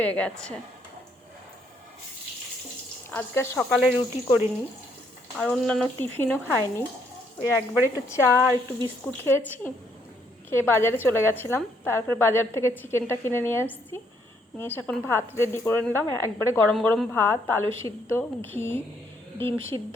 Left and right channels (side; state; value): both; normal; correlation 0.71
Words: গেছে। আজকে সকালে রুটি করিনি আর অন্যান্য টিফিনও খাইনি। ওই একবার একটু চা আর একটু বিস্কুট খেয়েছি, খেয়ে বাজারে চলে গেছিলাম। তারপরে বাজার থেকে চিকেনটা কিনে নিয়ে এসেছি, নিয়ে এসে এখন ভাত রেডি করে নিলাম। একবারে গরম গরম ভাত, আলু সিদ্ধ, ঘি, ডিম সিদ্ধ